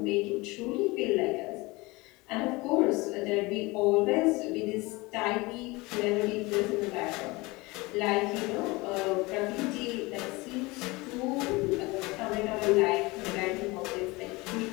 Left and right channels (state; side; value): quieter; right; 23.3 dB